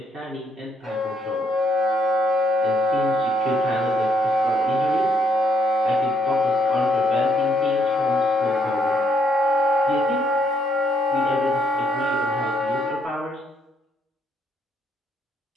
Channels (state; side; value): normal; both; correlation 0.72